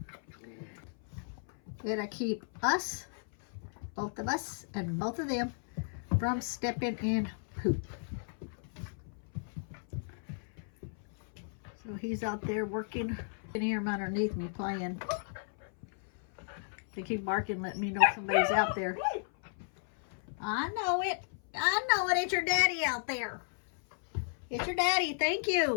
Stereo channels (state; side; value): silent; right; 55 dB below the other